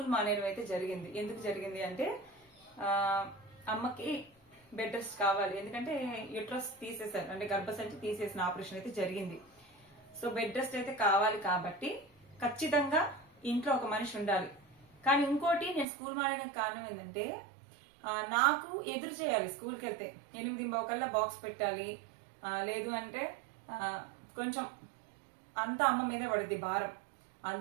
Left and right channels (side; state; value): left; drops out; at 15.9 s